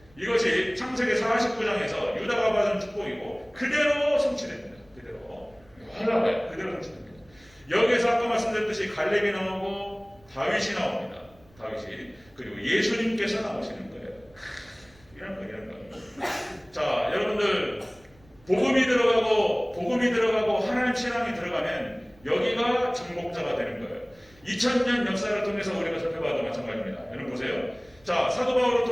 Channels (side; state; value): right; noise; rumble, 29 dB below the sound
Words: 이것이 창세기 49장에서 유다가 받은 축복이고 그대로 성취됩니다. 그대로 성취됩니다. 여기에서 아까 말씀드렸듯이 갈렙이 나오고 다윗이 나옵니다. 다윗이. 그리고 예수님께서 나오시는 거예요. 이런 거. 자, 여러분들 복음이 들어가고 하나님 신앙이 들어가면 여기가 정복자가 되는 거예요. 2000년 역사를 통해서 우리가 살펴봐도 마찬가지입니다. 여러분 보세요. 자, 사도 바울을